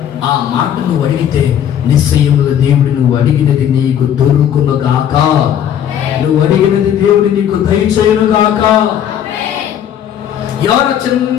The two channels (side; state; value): right; quieter; 9.8 dB